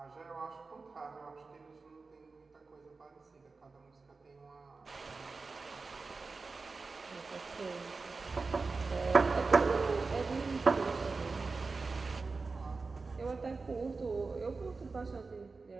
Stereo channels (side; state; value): left; quieter; 4.1 dB